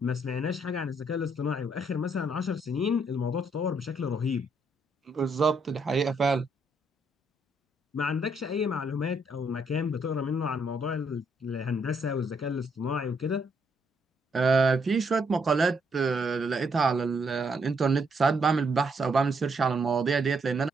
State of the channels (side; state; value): both; normal; correlation 0.73